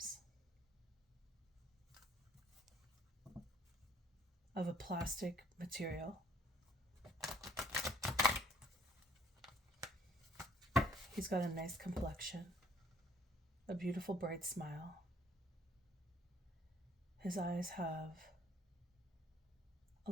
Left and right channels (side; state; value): both; normal; correlation 0.60